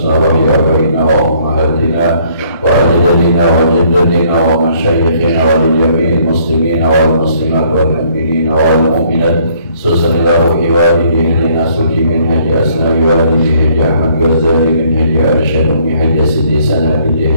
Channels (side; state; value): both; inverted; correlation -0.63